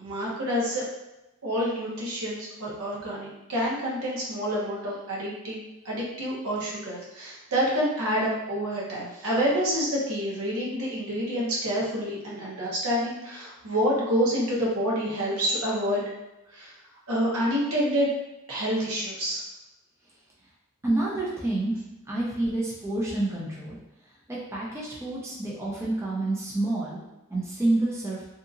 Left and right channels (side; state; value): both; normal; correlation 0.41